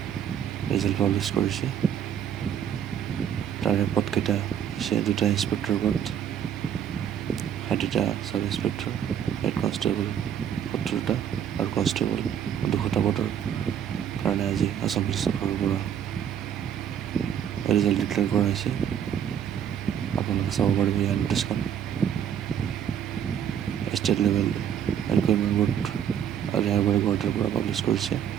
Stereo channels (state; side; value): quieter; left; 9.0 dB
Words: ৰিজাল্ট পাব্লিছ কৰিছে। তাৰে পদকেইটা হৈছে 2টা ইন্সপেক্টৰ পদ, 60টা চাব ইন্সপেক্টৰ, হেড কনষ্টেবল 70টা আৰু কনষ্টেবল 200টা পদৰ কাৰণে আজি আসাম পুলিচৰ ফালৰ পৰা ৰিজাল্ট ডিক্লেয়াৰ কৰা হৈছে। আপোনালোকে চাব পাৰিব ইয়াৰ নটিছখন। ষ্টেট লেভেল ৰিক্ৰুইটমেণ্ট বৰ্ড ৰেহাৰবাৰী গুৱাহাটীৰ পৰা পাব্লিছ কৰিছে।